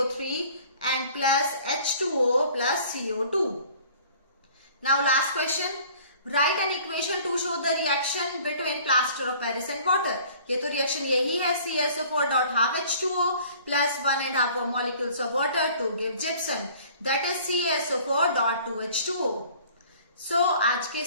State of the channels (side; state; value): both; inverted; correlation -0.51